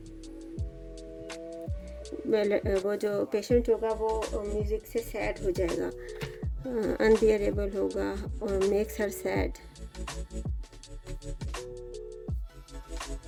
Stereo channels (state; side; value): identical; both; correlation 1.00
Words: वो जो पेशेंट होगा वो म्यूज़िक से सैड हो जाएगा, अनबियरेबल होगा और मेक्स हर सैड,